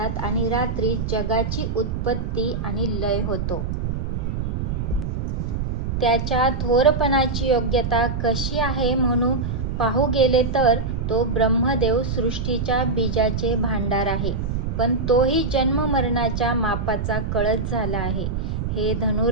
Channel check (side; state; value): right; noise; rumble, 2 dB below the sound